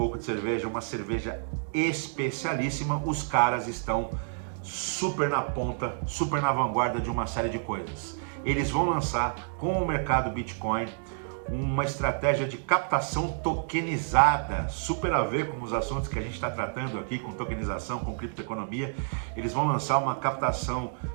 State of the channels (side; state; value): left; silent; digital silence